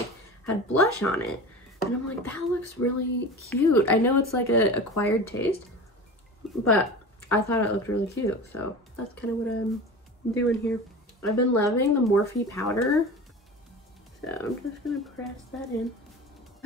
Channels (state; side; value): normal; both; correlation 0.33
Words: had blush on it, and I'm like, that looks really cute. I know it's like a acquired taste, but I thought it looked really cute, so that's kind of what I'm doing here. I've been loving the Morphe powder, so I'm just gonna press that in.